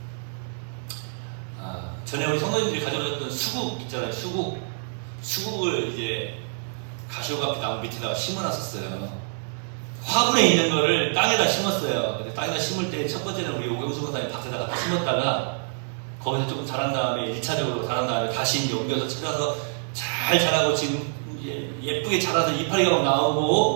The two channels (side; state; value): left; silent; digital silence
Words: 전에 우리 성도님들이 가져오셨던 수국 있잖아요. 수국을 이제 가시오가피 나무 밑에다가 심어놨었어요. 화분에 있는 거를 땅에다 심었어요. 근데 땅에다 심을 때 첫 번째는 우리 오경수 권사님 밭에다가 심었다가 거기서 조금 자란 다음에 1차적으로 자란 다음에 다시 이제 옮겨서 찾아서 잘 자라고 지금 이제 예쁘게 자라서 이파리가 막